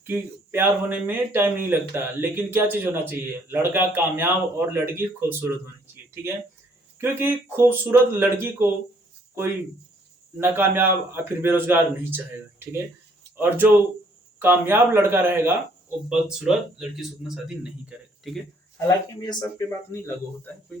कि प्यार होने में टाइम नहीं लगता, लेकिन क्या चीज होना चाहिए, लड़का कामयाब और लड़की खूबसूरत होनी चाहिए, ठीक है। क्योंकि खूबसूरत लड़की को कोई नाकामयाब या फिर बेरोजगार नहीं चाहेगा, ठीक है। और जो कामयाब लड़का रहेगा वो बदसूरत लड़की से उतना शादी नहीं करेगा, ठीक है। हालांकि ये सब पे बात नहीं लागू होता है, कोई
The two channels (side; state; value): both; normal; correlation 0.64